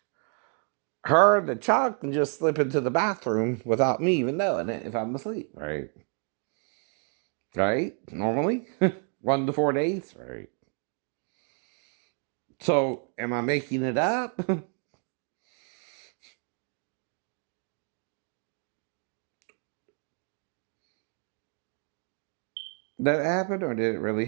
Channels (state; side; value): quieter; left; 39.7 dB